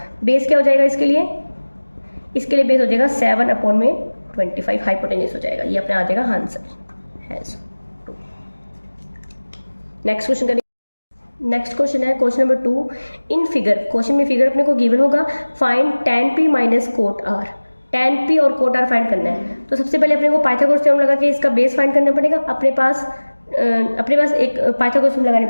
बेस क्या हो जाएगा इसके लिए बेस हो जाएगा 7 अपॉन में 25 हाइपोटेनियस हो जाएगा। ये अपने आ जाएगा आंसर। नेक्स्ट क्वेश्चन करेंगे। नेक्स्ट क्वेश्चन है question number 2। In figure, question में फिगर अपने को गिवन होगा, find tan P minus coat R। tan P और कोट R फाइंड करना है। तो सबसे पहले अपने को पाइथागोरस थ्योरम लगा के इसका बेस फाइंड करना पड़ेगा। अपने पास एक पाइथागोरस थ्योरम लगानी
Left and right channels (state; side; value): inverted; both; correlation -1.00